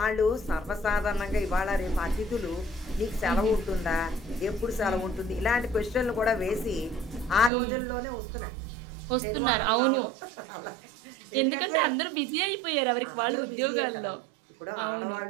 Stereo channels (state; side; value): drops out; left; at 7.5 s